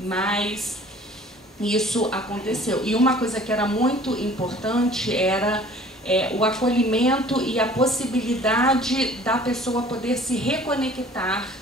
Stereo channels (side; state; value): both; normal; correlation 0.50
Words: isso aconteceu. E uma coisa que era muito importante era o acolhimento e a possibilidade da pessoa poder se reconectar